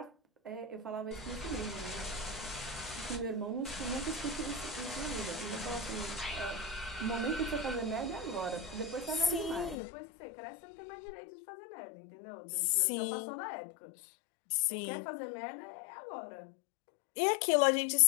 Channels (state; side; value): drops out; right; at 9.8 s